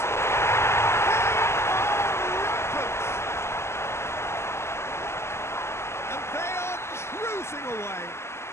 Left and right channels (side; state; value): right; late; 0.13 ms